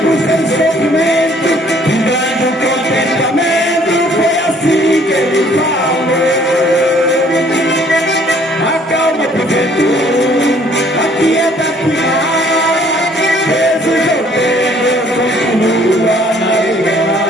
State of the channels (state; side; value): normal; both; correlation 0.60